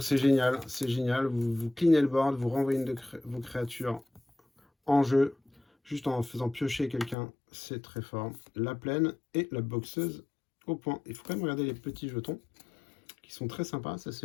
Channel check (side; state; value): right; drops out; at 7.2 s